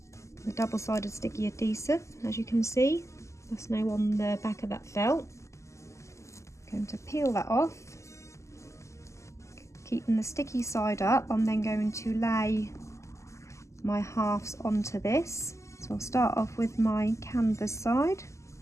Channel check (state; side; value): late; right; 0.14 ms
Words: double-sided sticky adhesive. As you can see, that's now on the back of that felt. I'm going to peel that off. Keeping the sticky side up, I'm then going to lay my halves onto this. So I'll start off with my canvas side.